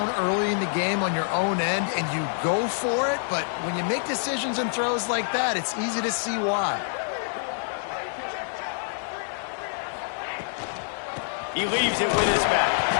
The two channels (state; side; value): silent; right; 61 dB below the other